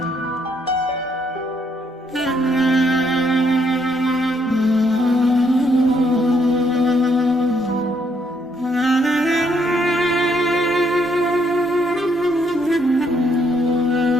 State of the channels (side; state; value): both; normal; correlation 0.72